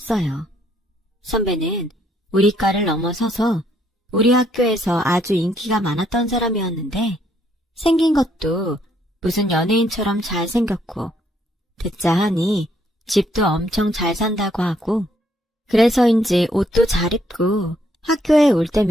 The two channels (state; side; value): normal; both; correlation 0.70